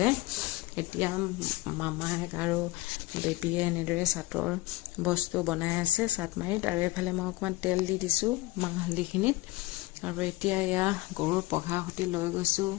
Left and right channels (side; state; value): right; quieter; 19.8 dB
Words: এতিয়া মামায়েক আৰু বেবীয়ে এনেদৰে চাটৰ বস্তু বনাই আছে চাটমাৰিত। আৰু এইফালে মই অকণমান তেল দি দিছোঁ মাহ হালধিখিনিত। আৰু এতিয়া এয়া গৰুৰ পঘা সতি লৈ গৈছোঁ